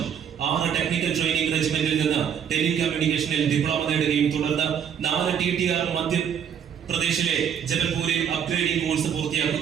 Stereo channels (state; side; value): quieter; left; 8.2 dB